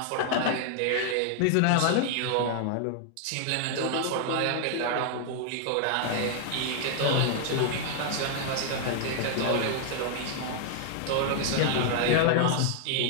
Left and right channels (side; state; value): both; different; correlation 0.00